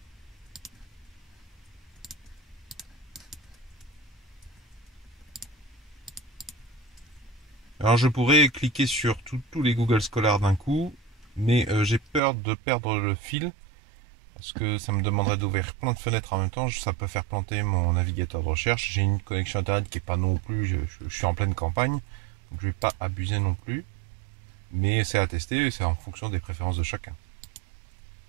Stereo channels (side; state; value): left; drops out; at 12.2 s